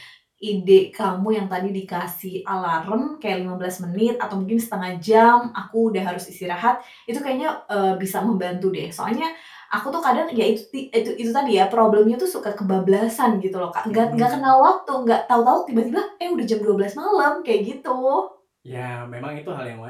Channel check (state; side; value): identical; both; correlation 1.00